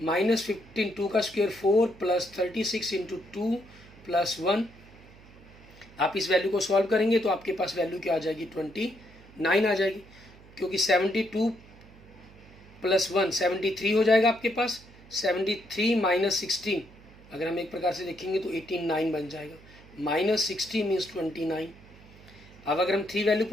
15, 2 का स्क्वायर 4 प्लस 36 इंटू 2 प्लस 1। आप इस वैल्यू को सॉल्व करेंगे तो आपके पास वैल्यू क्या आ जाएगी, 29 आ जाएगी, क्योंकि 72 प्लस 1 73 हो जाएगा आपके पास। 73 माइनस 16 अगर हम एक प्रकार से देखेंगे तो 89 बन जाएगा, माइनस 60 मीन्स 29। अब अगर हम 3 वैल्यू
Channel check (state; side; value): noise; right; hum, 22 dB below the sound